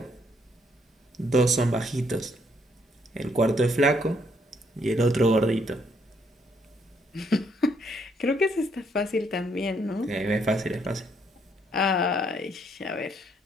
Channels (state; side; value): normal; both; correlation 0.71